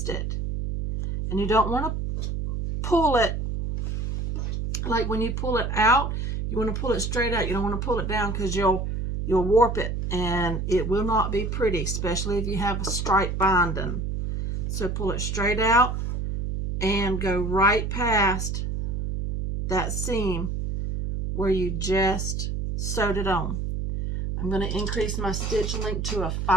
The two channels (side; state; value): right; noise; hum, 2 dB below the sound